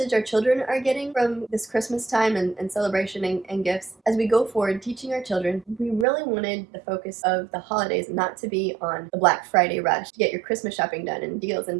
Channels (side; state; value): left; drops out; at 6.1 s